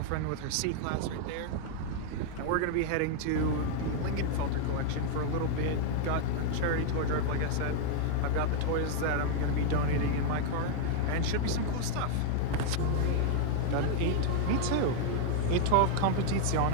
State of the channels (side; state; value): both; different; correlation 0.00